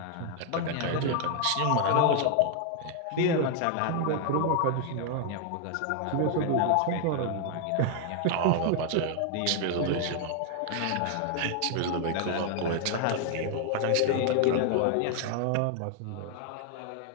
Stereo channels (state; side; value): different; both; correlation 0.00